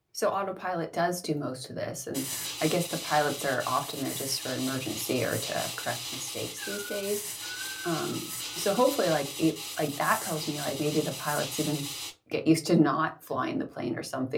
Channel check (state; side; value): identical; both; correlation 1.00